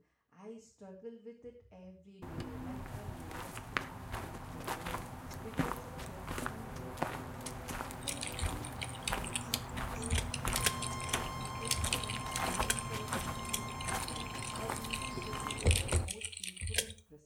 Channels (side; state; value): both; identical; correlation 1.00